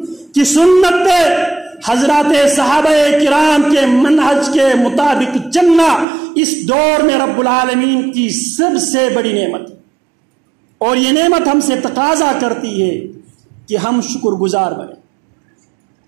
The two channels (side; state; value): left; drops out; at 6.1 s